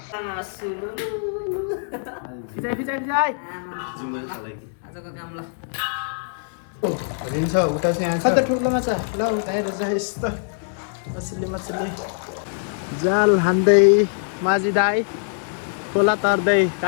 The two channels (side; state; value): right; silent; digital silence